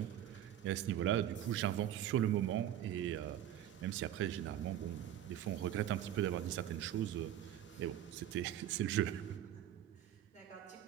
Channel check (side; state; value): left; quieter; 11.4 dB